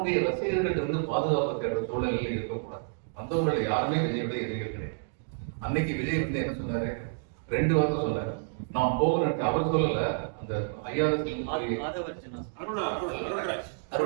ரசிகர்கள் இருந்து பாதுகாப்பு தேடுற சூழ்நிலையில் இருக்கக்கூடாது. வந்தவங்களை யாருமே விஜயுடைய எதிரிகள் கிடையாது. அன்னைக்கு விஜய் வந்து என்ன சொன்னாரு, 2 வாரம் சொன்னாரு, நான் போகணும். அவர் சொல்லல, அந்த ஐஆர்எஸ்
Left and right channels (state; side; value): silent; left; digital silence